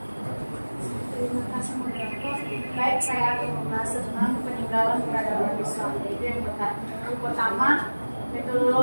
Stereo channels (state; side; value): inverted; both; correlation -1.00